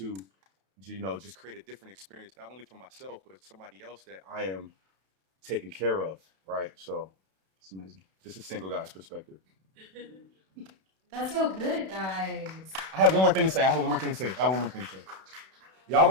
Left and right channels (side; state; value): left; late; 32 ms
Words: just create a different experience, not only for myself, but somebody else that I am taking care of, right? So it's amazing. Just a single guy's perspective. That's so good, guys. I have one more thing to say. Y'all